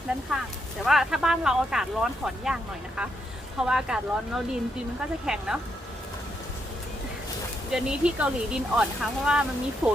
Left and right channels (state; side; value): normal; both; correlation 0.79